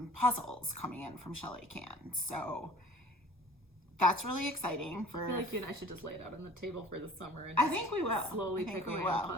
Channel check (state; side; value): normal; both; correlation 0.47